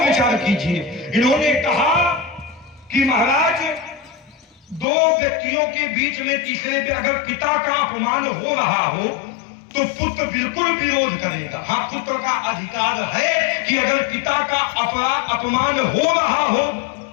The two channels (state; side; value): drops out; right; at 4.9 s